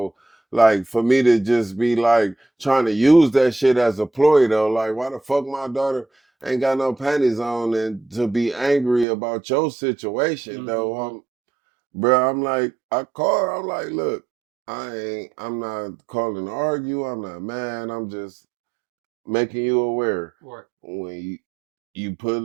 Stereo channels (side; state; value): left; drops out; at 9.1 s